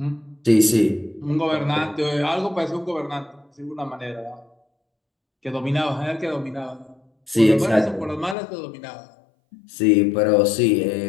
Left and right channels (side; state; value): right; drops out; at 8.3 s